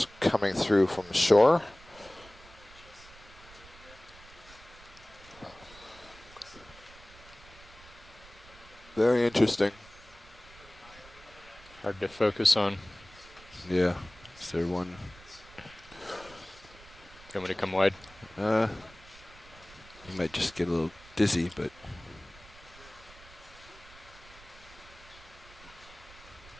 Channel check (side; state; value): right; noise; rumble, 21 dB below the sound